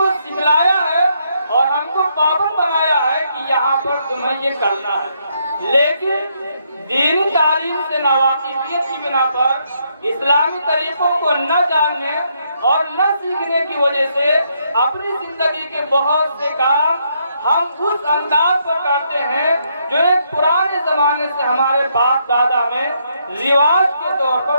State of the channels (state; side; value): inverted; both; correlation -0.75